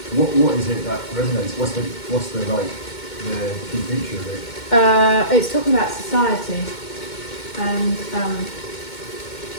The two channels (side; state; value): right; late; 2.2 ms